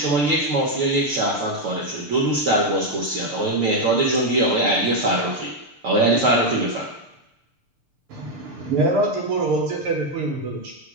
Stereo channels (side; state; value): left; late; 6.7 ms